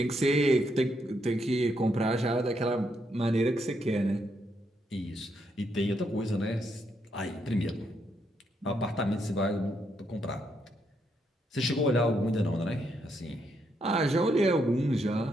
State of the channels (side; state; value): both; normal; correlation 0.77